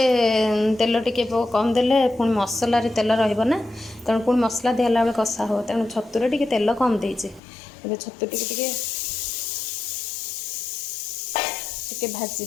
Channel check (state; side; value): drops out; right; at 7.4 s